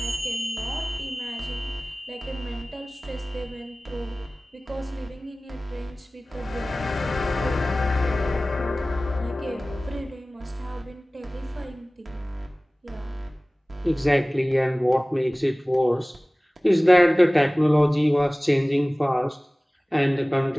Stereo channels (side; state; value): both; normal; correlation 0.98